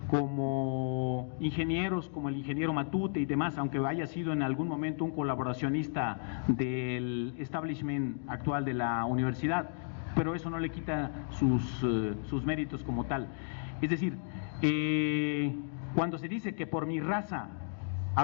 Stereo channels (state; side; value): silent; right; digital silence